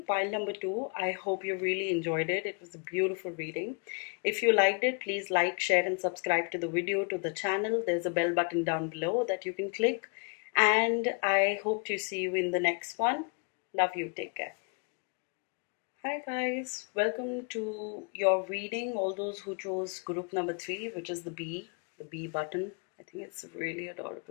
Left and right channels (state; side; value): quieter; right; 36.7 dB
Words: pile number 2. I hope you really enjoyed it. It was a beautiful reading. If you liked it, please like, share and subscribe to the video, to the channel. There's a bell button down below that you can click. And I hope to see you in the next one. Love you. Take care. Hi guys, welcome to your reading. All those who chose group number 3, which is the B button. I think it's really